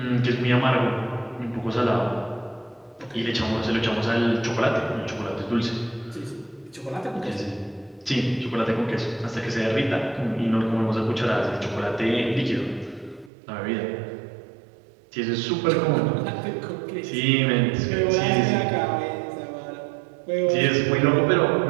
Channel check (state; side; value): drops out; left; at 13.3 s